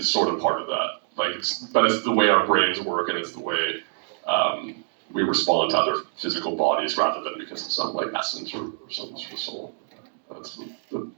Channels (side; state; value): left; silent; digital silence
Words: sort of part of that. But it's the way our brains work, and it's the way we respond to other physical bodies rather than because of some like essence or some sort of soul. That's a